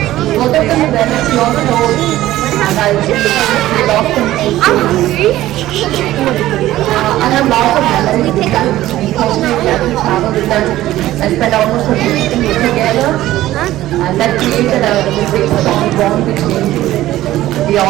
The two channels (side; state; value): left; quieter; 15.0 dB